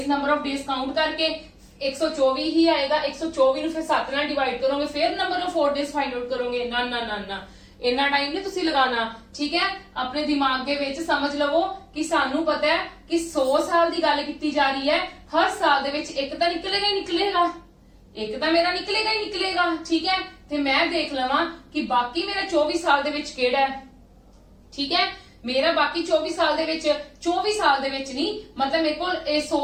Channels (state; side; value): identical; both; correlation 1.00